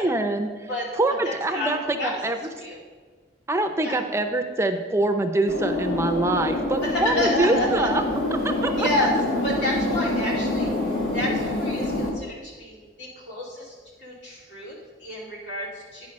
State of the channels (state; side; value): normal; both; correlation 0.41